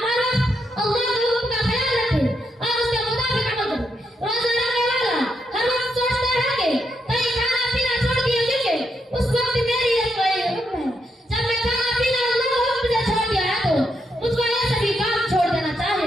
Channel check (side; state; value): both; normal; correlation 0.80